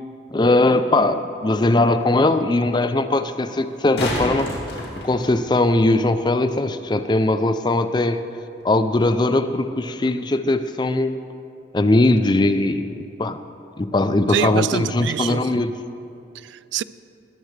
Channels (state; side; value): normal; both; correlation 0.64